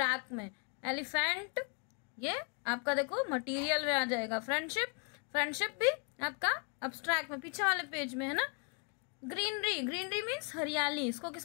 में। एलिफेंट, ये आपका देखो मटेरियल में आ जाएगा। फ्रेंडशिप, फ्रेंडशिप भी आपका अब्स्ट्रैक्ट में, पीछे वाले पेज में है ना। ग्रीनरी, ग्रीनरी मीन्स हरियाली, इसको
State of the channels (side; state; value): right; quieter; 38.5 dB